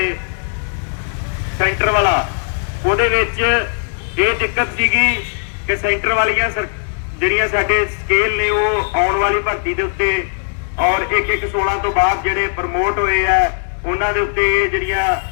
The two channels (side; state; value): right; silent; 68 dB below the other